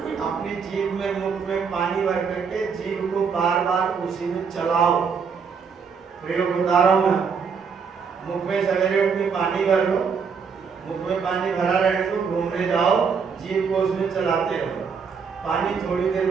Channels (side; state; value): left; quieter; 6.0 dB